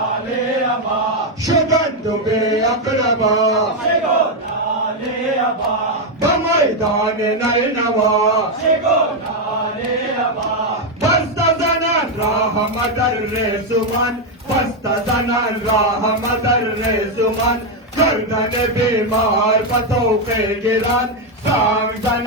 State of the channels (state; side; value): normal; both; correlation 0.03